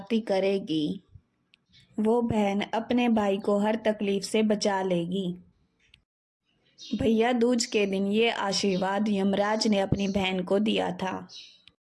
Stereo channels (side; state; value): both; identical; correlation 1.00